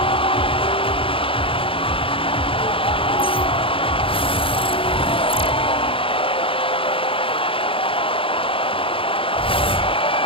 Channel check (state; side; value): late; right; 0.26 ms